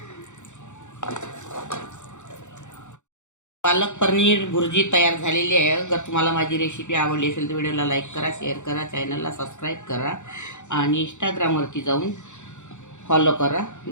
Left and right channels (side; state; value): right; late; 0.84 ms